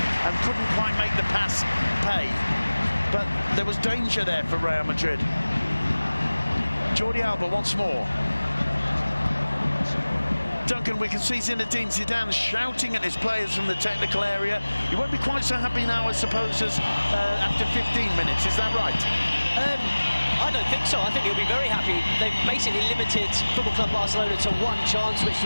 and couldn't quite make the pass pay. But there was danger there for Real Madrid. Jordi Alba once more. Duncan, we can see Zinedine Zidane shouting at his players from the technical area. He won't be quite so happy now, I suppose, as after 15 minutes. Is that right? I don't think so. I think he'll be very happy. They've basically limited Football Club Barcelona to one chance, which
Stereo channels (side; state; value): both; inverted; correlation -1.00